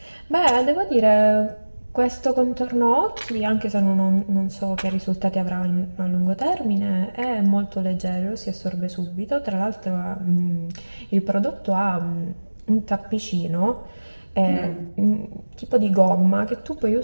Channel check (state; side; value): inverted; both; correlation -1.00